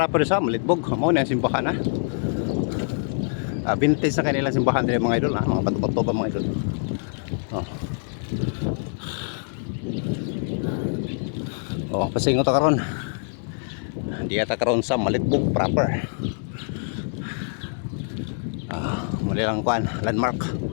sa malitbog. Mo ni ang simbahan vintage sa kanilang simbahan dili mga idol mga bato-bato ba mga idol. Pasingot ta karon. Di ata karon sa malitbog proper. Muli lang kuan landmark.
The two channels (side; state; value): right; silent; digital silence